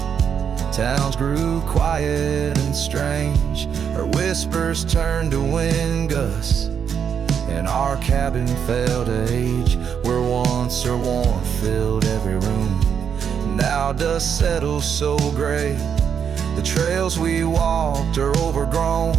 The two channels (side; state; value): left; quieter; 7.5 dB